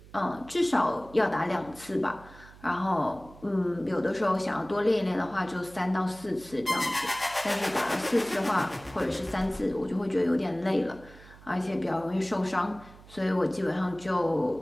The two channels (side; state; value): right; noise; hum, 21 dB below the sound